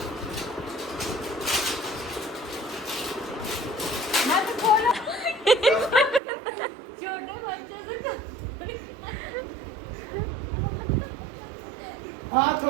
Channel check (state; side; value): drops out; left; at 6.2 s